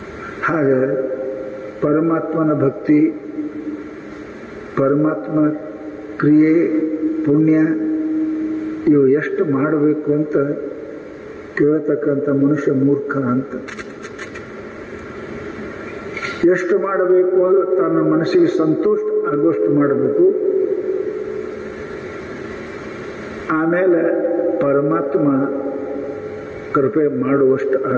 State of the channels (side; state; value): both; identical; correlation 1.00